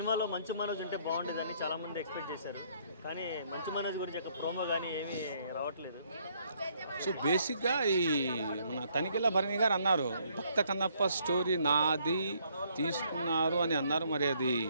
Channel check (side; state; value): both; inverted; correlation -0.67